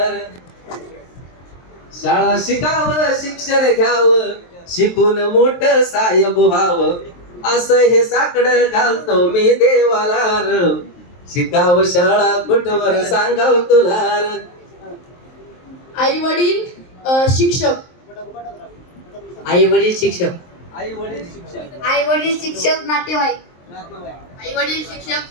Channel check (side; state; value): right; late; 23 ms